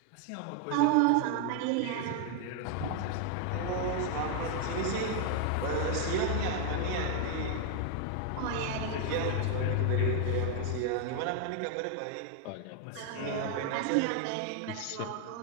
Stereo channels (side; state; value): both; different; correlation 0.00